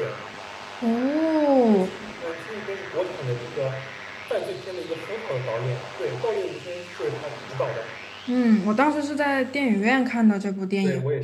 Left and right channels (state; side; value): identical; both; correlation 1.00